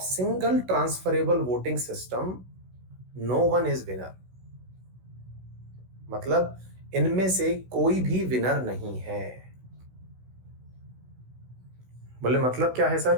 single transferable voting system, no one is winner. मतलब इनमें से कोई भी विनर नहीं है। बोले मतलब क्या है सर,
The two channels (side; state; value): left; late; 16 ms